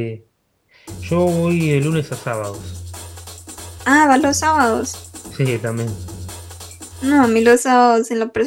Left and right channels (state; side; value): identical; both; correlation 1.00